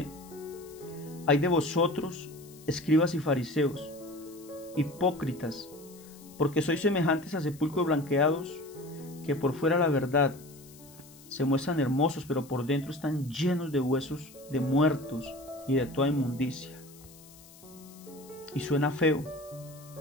«Ay de vosotros, escribas y fariseos, hipócritas, porque sois semejantes a sepulcros blanqueados, que por fuera la verdad se muestran hermosos, pero por dentro están llenos de huesos de muertos y de toda inmundicia». Y suena feo,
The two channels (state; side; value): noise; left; hiss, 22 dB below the sound